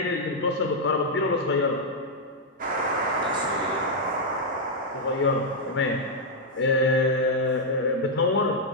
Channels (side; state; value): both; normal; correlation -0.03